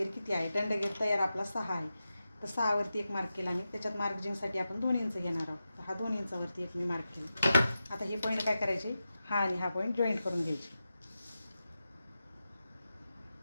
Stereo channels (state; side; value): inverted; both; correlation -0.91